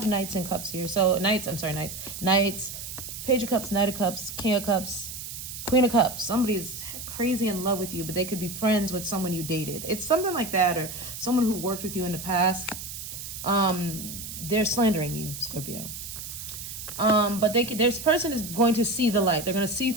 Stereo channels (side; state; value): right; noise; hiss, 9 dB below the sound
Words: Knights and Cups here. So Knights, Page of Cups, Knight of Cups, King of Cups, Queen of Cups. Somebody's crazy in love with you, but they could be friends with someone you dated. It's something like that, or someone who worked with you in the past. They're slandering you, Scorpio. But this person is going to see the light. They're going to see